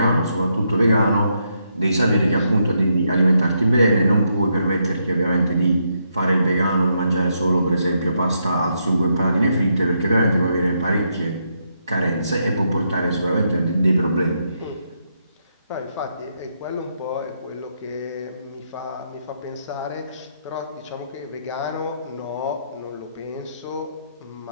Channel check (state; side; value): inverted; both; correlation -0.78